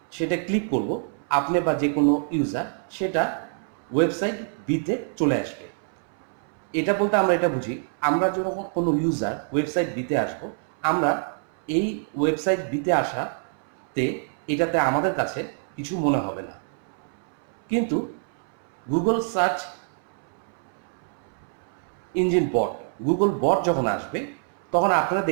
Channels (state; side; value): silent; left; 61 dB below the other